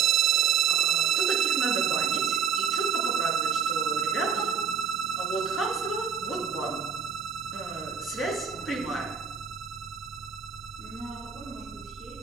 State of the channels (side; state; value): left; quieter; 6.8 dB